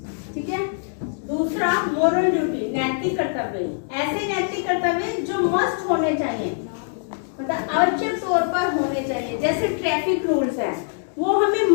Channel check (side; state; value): right; silent; digital silence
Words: ठीक है। दूसरा मोरल ड्यूटी, नैतिक कर्तव्य। ऐसे नैतिक कर्तव्य जो मस्ट होने चाहिए, मतलब आवश्यक तौर पर होने चाहिए। जैसे ट्रैफिक रूल्स है, वो हमें